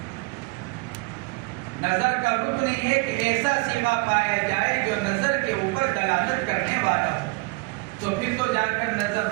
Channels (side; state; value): left; quieter; 25.5 dB